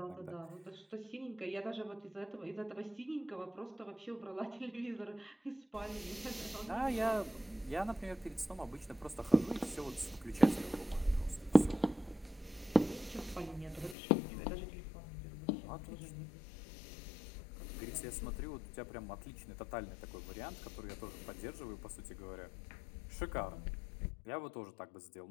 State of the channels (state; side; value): drops out; right; at 14.0 s